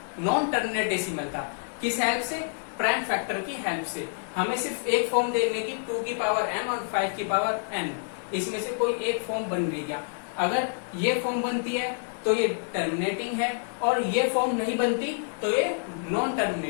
नॉन टर्मिनेट डेसिमल था। किस हेल्प से, प्राइम फैक्टर की हेल्प से। हमें सिर्फ एक फॉर्म देखने की 2 की पावर m और 5 की पावर n, इसमें से कोई एक फॉर्म बन रही क्या। अगर ये फॉर्म बनती है तो ये टर्मिनेटिंग है, और ये फॉर्म नहीं बनती तो ये नॉन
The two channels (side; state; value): right; silent; digital silence